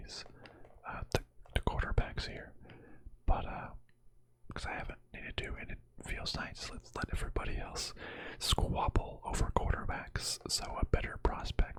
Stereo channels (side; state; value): both; identical; correlation 1.00